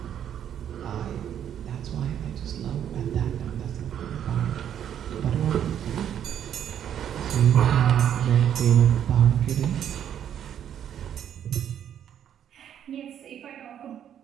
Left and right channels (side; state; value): left; quieter; 9.7 dB